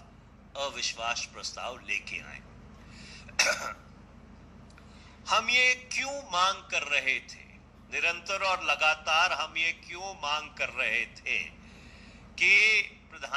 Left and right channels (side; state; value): both; identical; correlation 1.00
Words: अविश्वास प्रस्ताव लेके आए। हम ये क्यों मांग कर रहे थे, निरंतर और लगातार हम ये क्यों मांग कर रहे थे कि